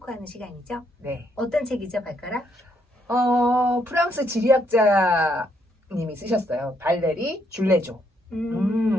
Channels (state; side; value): normal; both; correlation 0.73